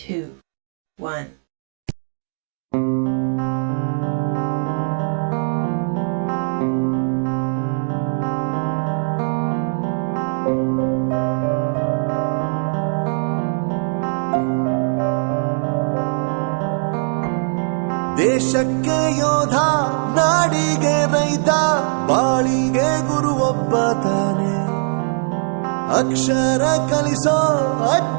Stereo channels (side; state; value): left; silent; 55 dB below the other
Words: 1. ದೇಶಕ್ಕೆ ಯೋಧ, ನಾಡಿಗೆ ರೈತ, ಬಾಳಿಗೆ ಗುರು ಒಬ್ಬ ತಾನೆ. ಅಕ್ಷರ ಕಲಿಸೋ,